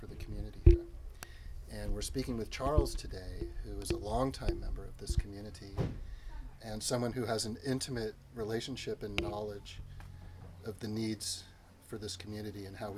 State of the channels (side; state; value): both; identical; correlation 1.00